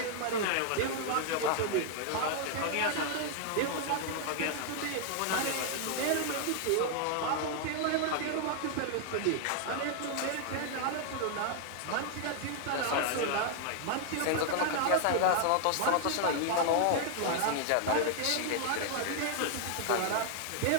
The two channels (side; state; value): both; different; correlation 0.00